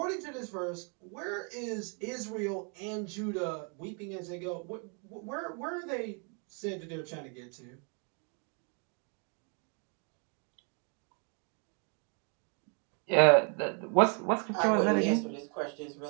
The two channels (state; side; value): quieter; left; 38.3 dB